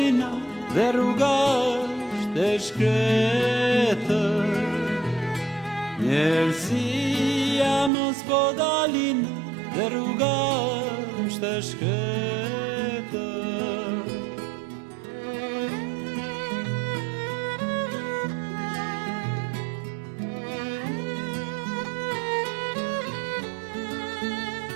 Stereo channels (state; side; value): drops out; left; at 7.9 s